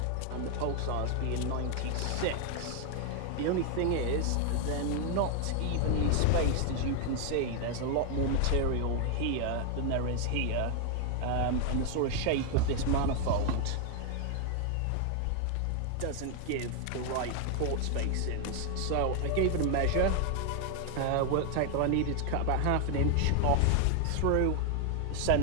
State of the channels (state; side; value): different; both; correlation 0.01